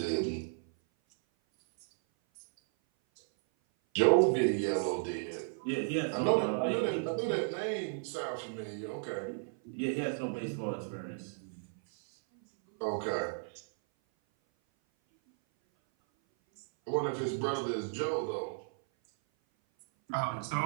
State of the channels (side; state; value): left; silent; 55 dB below the other